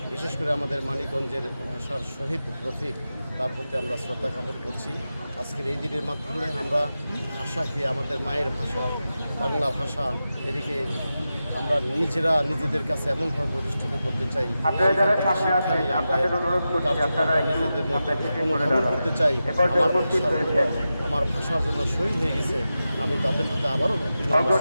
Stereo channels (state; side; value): inverted; both; correlation -0.92